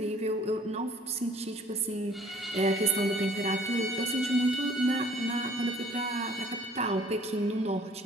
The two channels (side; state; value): both; normal; correlation 0.55